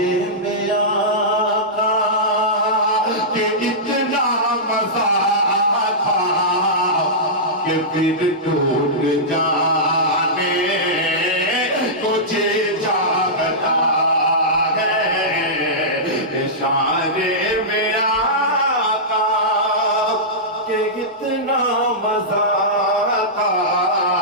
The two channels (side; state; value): both; normal; correlation -0.14